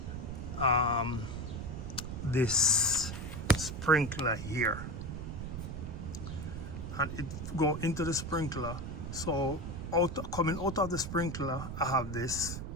this sprinkler here, and it go into the sprinkler. So coming out of the sprinkler, I have this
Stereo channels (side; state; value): right; noise; rumble, 6 dB below the sound